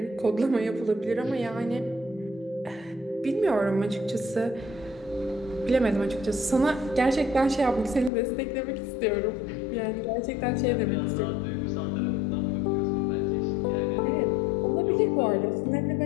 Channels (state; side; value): drops out; right; at 8.1 s